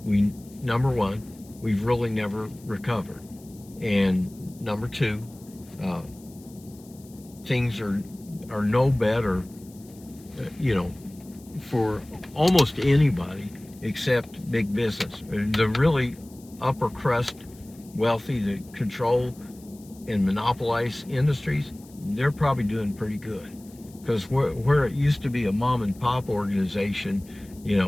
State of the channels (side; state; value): left; noise; hiss, 25 dB below the sound